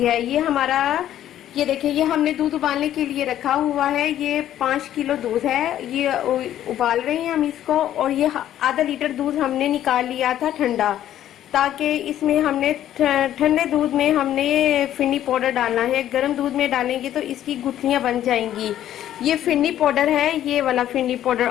ये देखिए, ये हमने दूध उबालने के लिए रखा हुआ है। ये 5 किलो दूध है, ये उबाल रहे हैं हम इसको। और ये आधा लीटर दूध हमने निकाल लिया था ठंडा, ताकि इसमें हमने ठंडे दूध में हमने फिन्नी पाउडर डालना है। गर्म दूध में डालेंगे तो इसकी गुठलियां बन जाएंगी। ये फिन्नी पाउडर है, ये वाला फिन्नी पाउडर।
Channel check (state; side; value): quieter; right; 11.8 dB